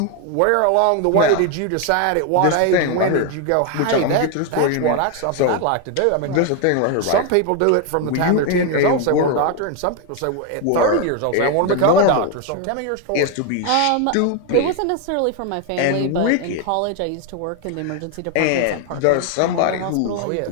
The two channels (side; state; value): both; different; correlation 0.01